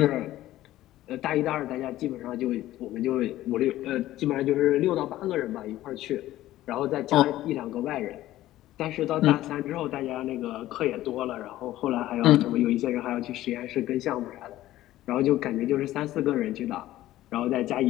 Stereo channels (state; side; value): quieter; right; 14.8 dB